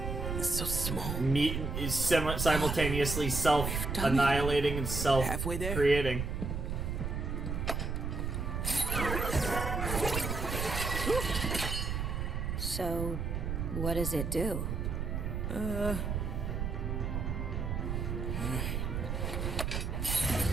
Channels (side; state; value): right; noise; rumble, 2 dB below the sound